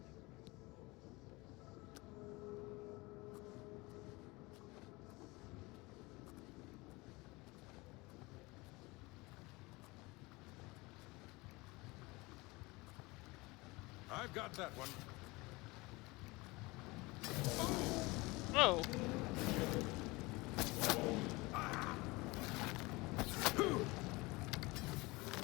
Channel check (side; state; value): right; quieter; 23.4 dB